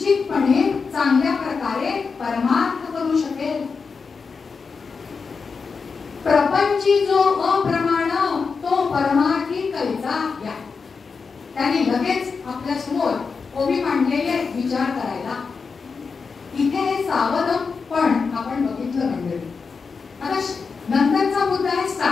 चांगल्या प्रकारे परमार्थ करू शकेल. प्रपंची जो अप्रमाण तो परमार्थी कैचा या. त्याने लगेच आपल्या समोर ओबी मांडलेले विचार करायला. इथे हे सावध पण आपण बघितलं मंडळी. आता नंतरचा मुद्दा आहे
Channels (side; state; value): right; quieter; 5.1 dB